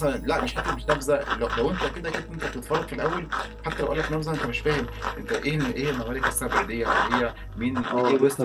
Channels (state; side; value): identical; both; correlation 1.00